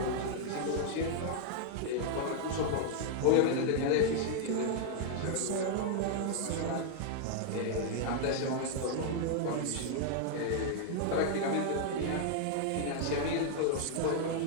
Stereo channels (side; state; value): both; different; correlation -0.01